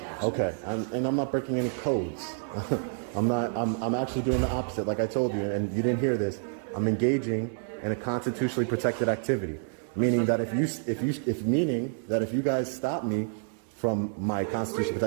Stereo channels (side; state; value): left; silent; digital silence